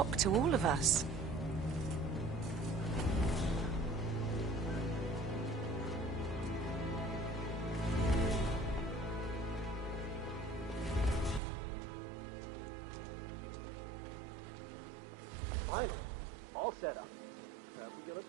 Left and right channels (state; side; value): drops out; left; at 11.4 s